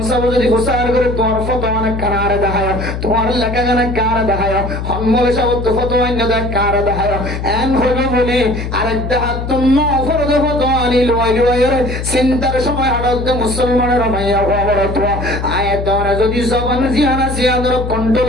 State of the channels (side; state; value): left; noise; hum, 5 dB below the sound